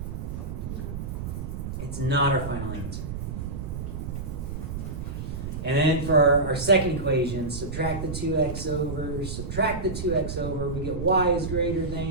No. It's not our final answer. And then for our second equation, subtract the 2x over, subtract the 2x over, we get y is greater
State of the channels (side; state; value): right; noise; rumble, 5 dB below the sound